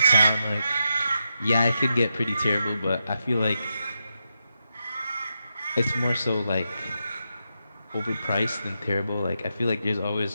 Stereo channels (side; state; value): both; inverted; correlation -0.85